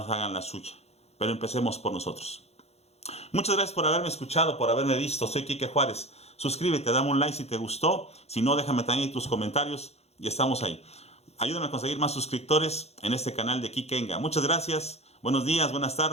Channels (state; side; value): late; right; 0.31 ms